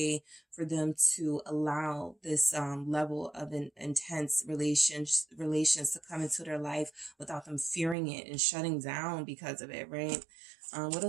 for them to allow this level of an intense relations to come into their life without them fearing it and shutting down because of it, right? What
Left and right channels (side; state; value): left; drops out; at 8.0 s